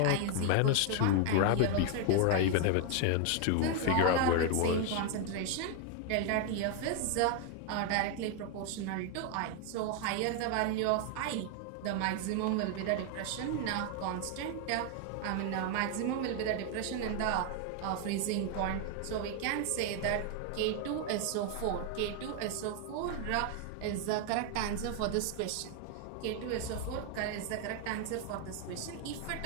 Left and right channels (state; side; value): different; both; correlation 0.00